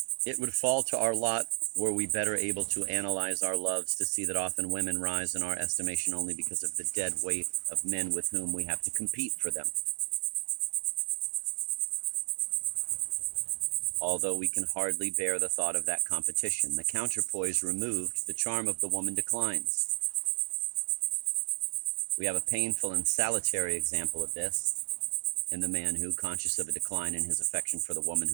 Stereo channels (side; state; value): left; silent; 57 dB below the other